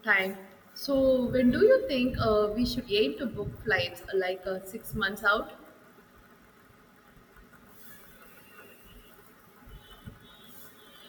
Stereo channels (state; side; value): identical; both; correlation 1.00